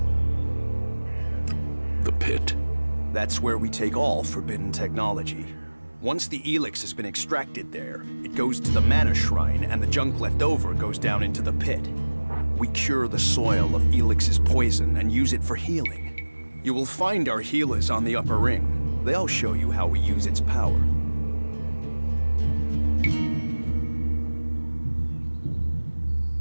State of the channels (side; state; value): both; inverted; correlation -1.00